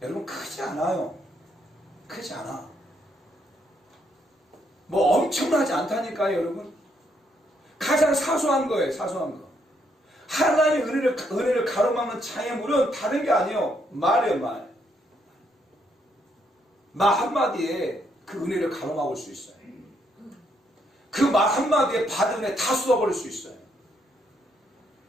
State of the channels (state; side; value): normal; both; correlation 0.74